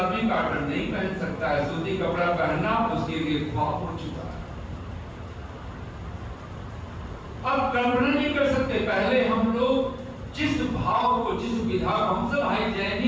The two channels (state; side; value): identical; both; correlation 1.00